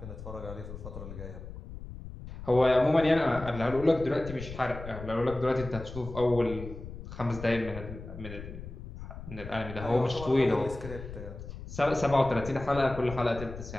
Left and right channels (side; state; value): left; noise; rumble, 11 dB below the sound